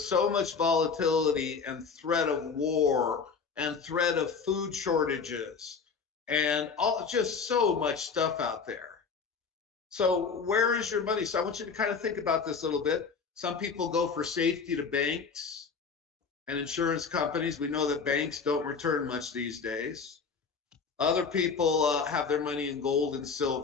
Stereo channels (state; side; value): quieter; right; 5.4 dB